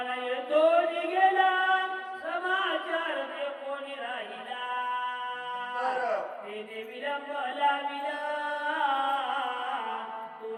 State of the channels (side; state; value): both; identical; correlation 1.00